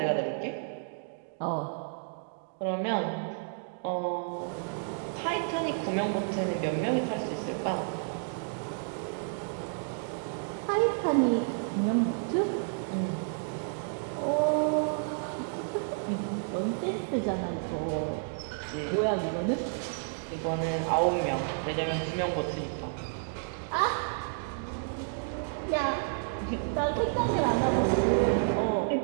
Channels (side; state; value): left; silent; digital silence